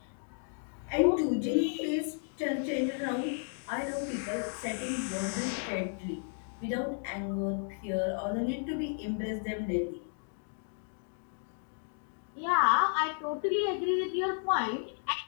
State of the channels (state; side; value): silent; right; 56 dB below the other